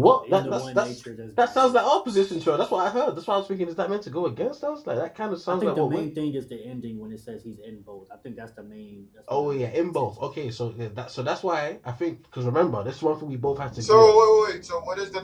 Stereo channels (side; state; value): both; identical; correlation 1.00